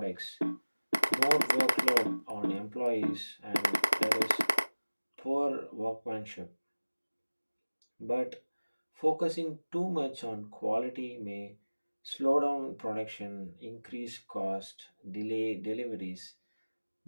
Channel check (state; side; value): inverted; both; correlation -1.00